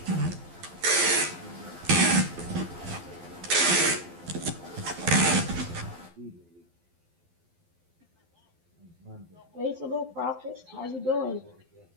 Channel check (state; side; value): late; left; 12 ms